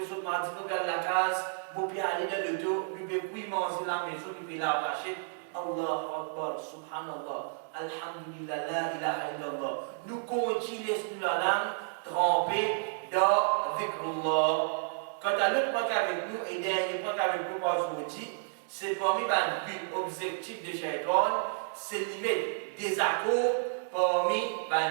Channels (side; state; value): left; silent; digital silence